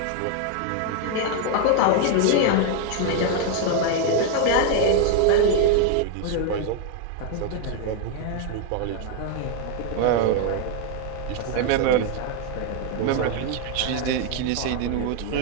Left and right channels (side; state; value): both; different; correlation 0.00